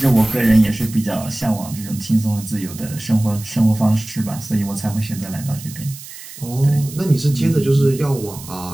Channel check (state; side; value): noise; right; hiss, 15 dB below the sound